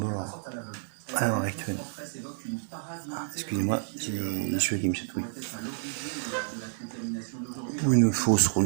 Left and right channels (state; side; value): silent; left; digital silence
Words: à l'heure actuelle. Excusez-moi, j'ai les cheveux qui me chatouillent. Ou une fausse